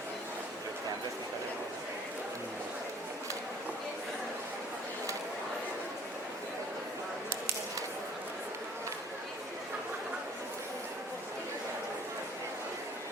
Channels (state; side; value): normal; both; correlation 0.53